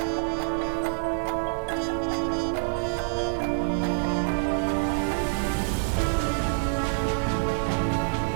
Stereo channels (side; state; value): left; silent; digital silence